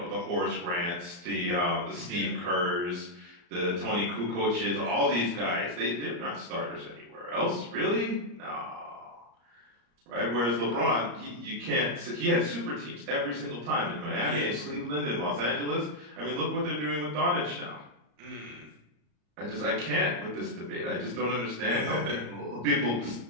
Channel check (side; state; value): left; late; 34 ms